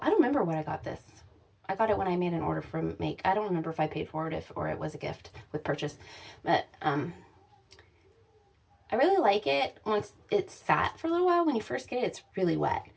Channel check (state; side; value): identical; both; correlation 1.00